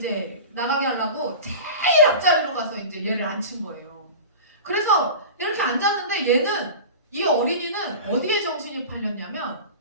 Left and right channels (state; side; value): inverted; both; correlation -0.33